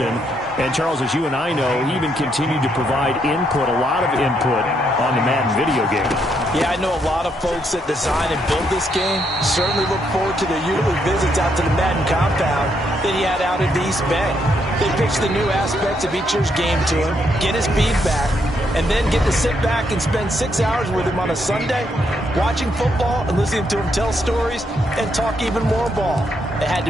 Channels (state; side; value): normal; both; correlation 0.76